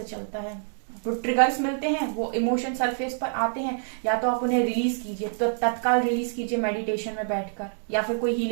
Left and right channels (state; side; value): silent; left; digital silence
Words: चलता है। तो ट्रिगर्स मिलते हैं, वो इमोशन सरफेस पर आते हैं, या तो आप उन्हें रिलीज कीजिए, तो तत्काल रिलीज कीजिए मेडिटेशन में बैठकर, या फिर कोई